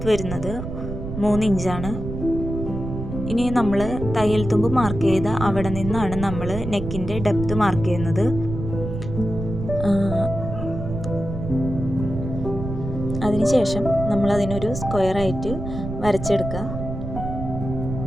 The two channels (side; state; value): right; noise; rumble, 7 dB below the sound